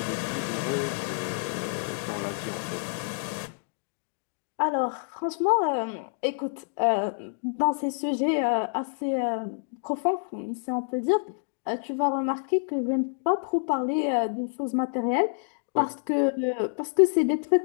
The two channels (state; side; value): silent; right; digital silence